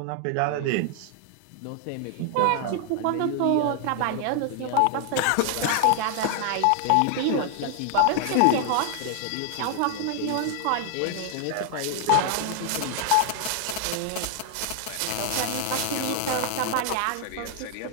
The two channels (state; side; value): different; both; correlation 0.00